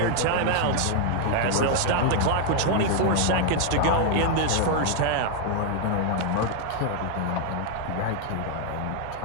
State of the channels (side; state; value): both; different; correlation 0.00